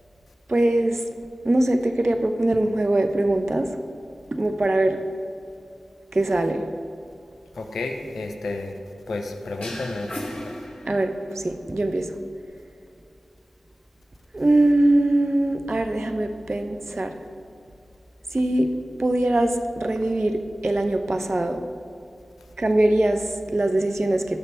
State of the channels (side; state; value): both; normal; correlation 0.97